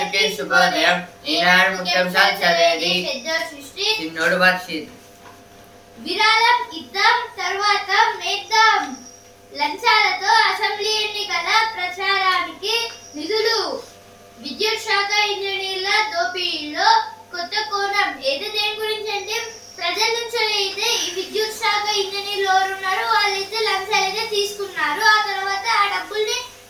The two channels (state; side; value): identical; both; correlation 1.00